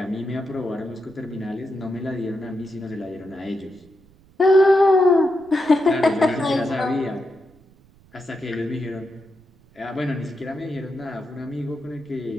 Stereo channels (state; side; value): noise; right; rumble, 28 dB below the sound